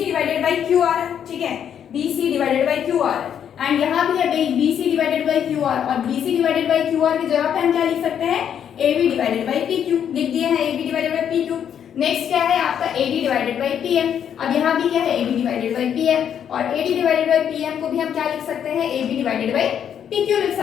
divided by Q R, ठीक है, B C divided by Q R and यहाँ भी है B C divided by Q R, और B C divided by Q R की जगह पे हम क्या लिख सकते हैं, A B divided by P Q लिख दिए हैं, A B divided by P Q. Next क्या है आपका A D divided by P M, अब यहाँ भी क्या है A B divided by P M, और A D divided by P M को भी हम क्या लिख सकते हैं, A B divided by P Q लिख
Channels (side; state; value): right; quieter; 8.9 dB